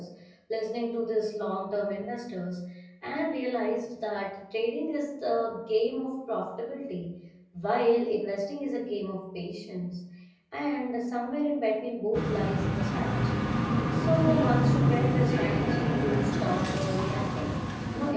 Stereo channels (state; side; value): identical; both; correlation 1.00